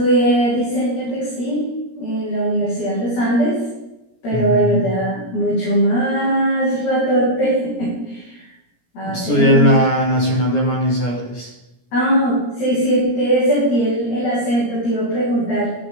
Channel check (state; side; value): late; right; 17 ms